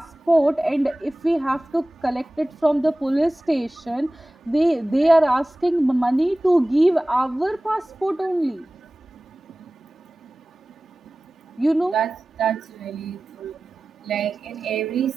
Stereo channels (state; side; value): normal; both; correlation 0.97